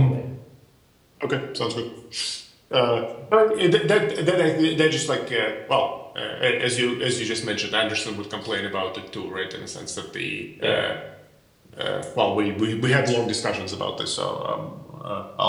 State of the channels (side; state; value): both; identical; correlation 1.00